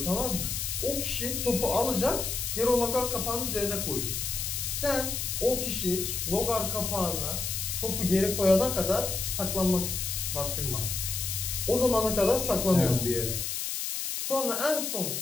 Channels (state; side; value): noise; left; hiss, 2 dB below the sound